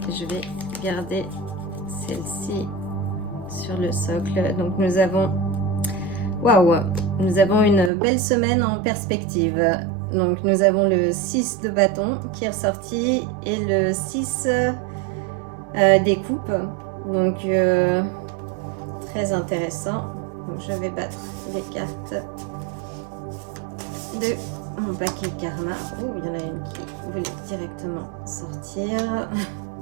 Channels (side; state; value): left; drops out; at 7.9 s